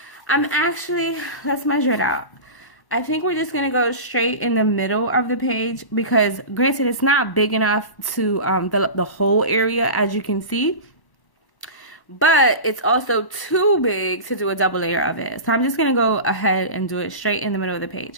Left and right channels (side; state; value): right; late; 1.1 ms